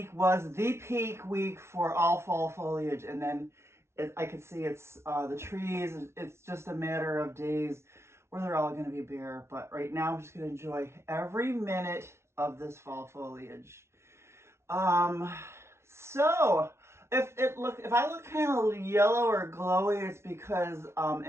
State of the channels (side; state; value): left; late; 0.13 ms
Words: was the peak week for all fall foliage, and then I can see it's the trees. It's just a matter of days where they're all going to be bare. But right now, I'm just going to enjoy every minute of this fall foliage. So if I look kind of yellow or glowy, it's because